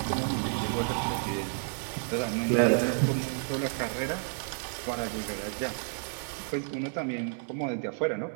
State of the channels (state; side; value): silent; left; 57 dB below the other